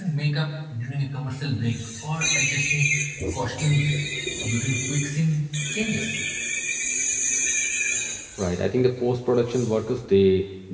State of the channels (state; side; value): identical; both; correlation 1.00